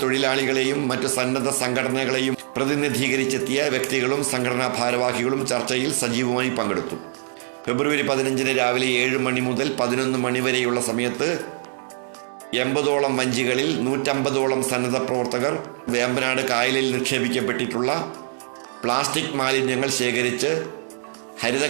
തൊഴിലാളികളെയും മറ്റു സന്നദ്ധ സംഘടനകളെയും പ്രതിനിധീകരിച്ചെത്തിയ വ്യക്തികളും സംഘടനാ ഭാരവാഹികളും ചർച്ചയിൽ സജീവമായി പങ്കെടുത്തു. ഫെബ്രുവരി 15 രാവിലെ 7 മണി മുതൽ 11 മണി വരെയുള്ള സമയത്ത് 80ഓളം വഞ്ചികളിൽ 150ഓളം സന്നദ്ധ പ്രവർത്തകർ വേമ്പനാട് കായലിൽ നിക്ഷേപിക്കപ്പെട്ടിട്ടുള്ള പ്ലാസ്റ്റിക് മാലിന്യങ്ങൾ ശേഖരിച്ച്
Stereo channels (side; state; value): left; silent; digital silence